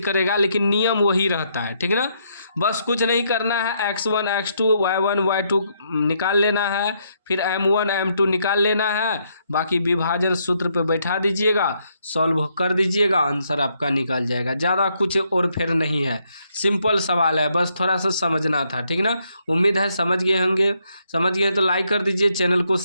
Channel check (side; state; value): both; inverted; correlation -0.75